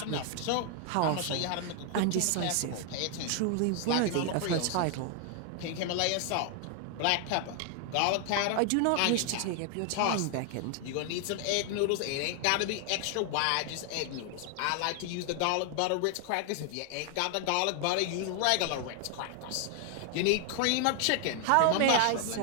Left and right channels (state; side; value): different; both; correlation 0.00